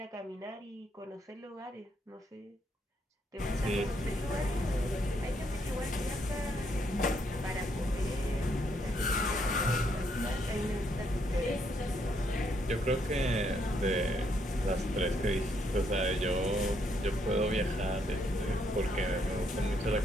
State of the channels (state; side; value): normal; both; correlation 0.73